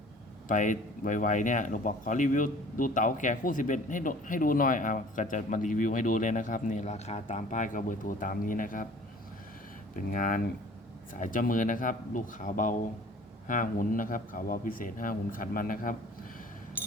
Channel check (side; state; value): both; normal; correlation 0.48